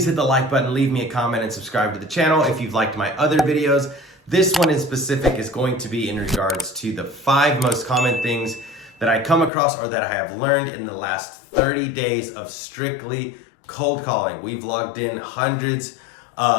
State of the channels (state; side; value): drops out; right; at 9.5 s